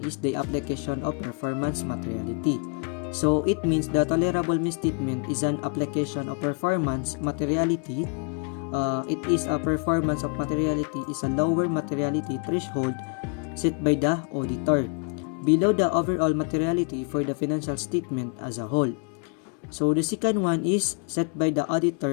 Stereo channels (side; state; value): right; quieter; 38.7 dB